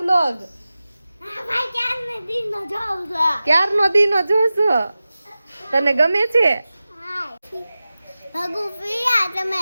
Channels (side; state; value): both; inverted; correlation -0.95